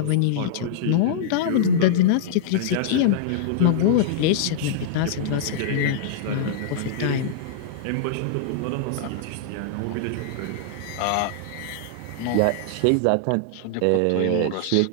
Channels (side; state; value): both; different; correlation -0.02